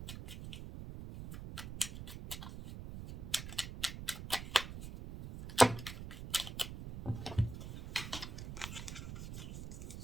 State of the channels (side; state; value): right; noise; rumble, 9 dB below the sound